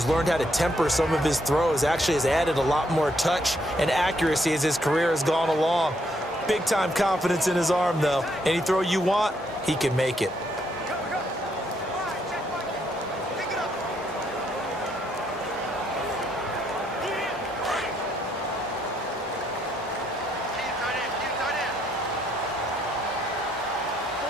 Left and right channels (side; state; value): both; normal; correlation 0.73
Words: learned how to temper some of his throws. Actually has added a lot more touch and accuracy as his career has gone along. Big-time confidence in his arm, though. Any throw you want, he can make it.